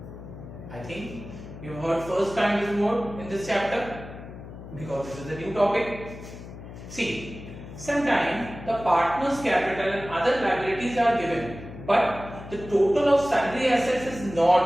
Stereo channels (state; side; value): noise; left; hum, 13 dB below the sound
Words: I think you've heard first time this word in this chapter because this is a new topic. See, sometimes the partner's capital and other liabilities are given, but the total of sundry assets is not